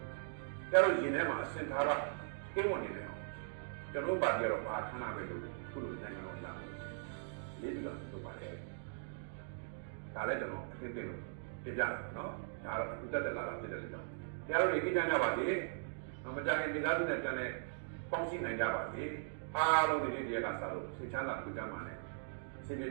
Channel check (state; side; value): silent; left; digital silence